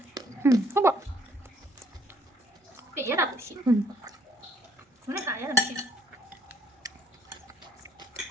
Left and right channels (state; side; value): normal; both; correlation 0.64